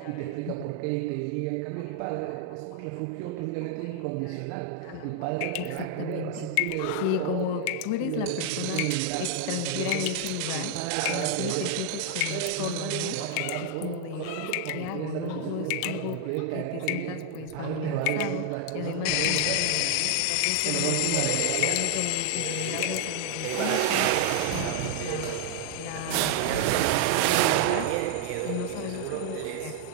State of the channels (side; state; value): both; different; correlation 0.00